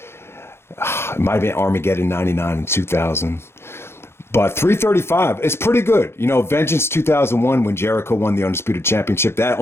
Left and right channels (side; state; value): right; late; 0.12 ms